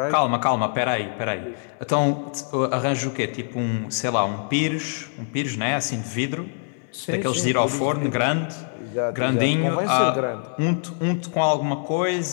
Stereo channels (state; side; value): silent; right; 63 dB below the other